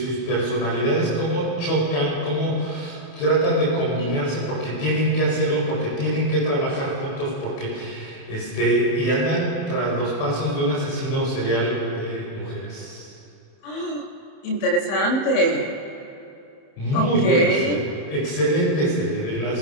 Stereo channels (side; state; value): right; late; 31 ms